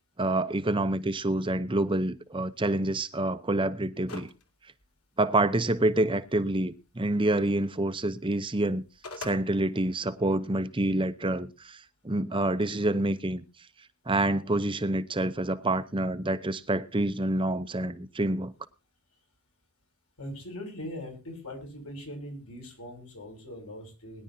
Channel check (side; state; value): both; normal; correlation 0.60